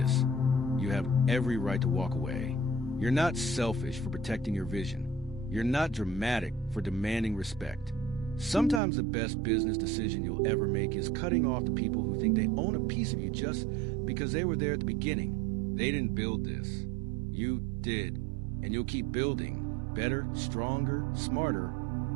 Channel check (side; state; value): left; drops out; at 8.8 s